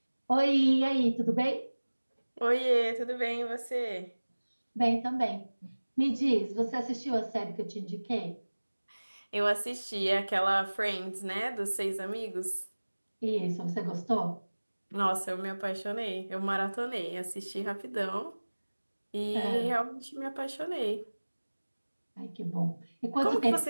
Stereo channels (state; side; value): inverted; both; correlation -1.00